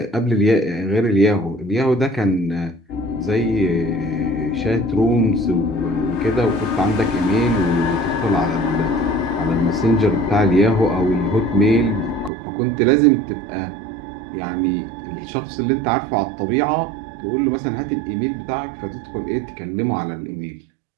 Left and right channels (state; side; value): drops out; left; at 12.3 s